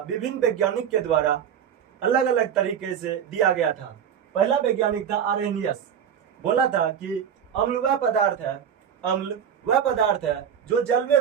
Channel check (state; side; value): quieter; left; 8.4 dB